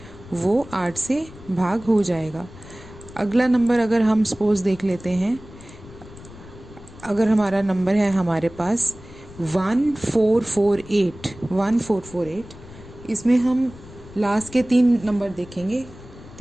वो 8 से भाग हो जाएगा। अगला नंबर अगर हम सपोज देख लेते हैं, अगर हमारा नंबर है हमारे पास 1448, इसमें हम लास्ट के 3 नंबर देखेंगे,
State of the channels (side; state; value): left; noise; rumble, 18 dB below the sound